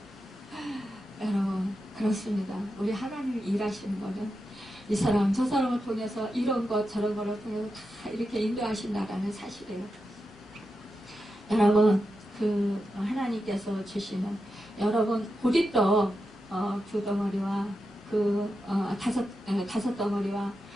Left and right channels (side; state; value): both; normal; correlation 0.89